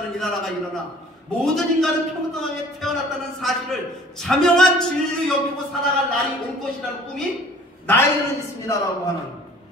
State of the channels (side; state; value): both; normal; correlation 0.50